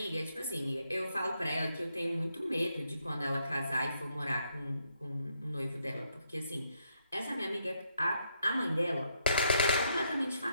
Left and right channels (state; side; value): inverted; both; correlation -0.76